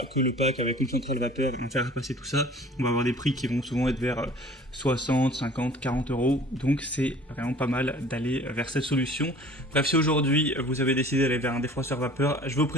que le pack avec une centrale vapeur et on faire repasser tout ça. On va avoir des prix qui vont souvent être vers 60, 50, 40 euros. Donc c'est vraiment pas mal d'aller vers cette solution. Bref, si aujourd'hui vous avez décidé d'aller vers un défroisseur vapeur, je vais vous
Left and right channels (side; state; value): both; normal; correlation 0.47